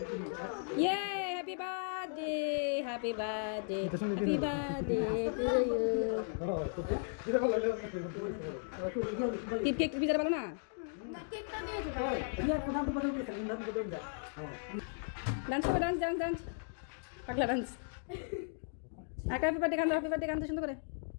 ইয়ে happy birthday happy birthday happy birthday to you cake পিজাটা ভালো না ডান্স করবে ডান্স ডান্স ডান্স পাগলা ডান্স হ্যাপি বার্থডে গান সুন্দর করে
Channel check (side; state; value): right; silent; digital silence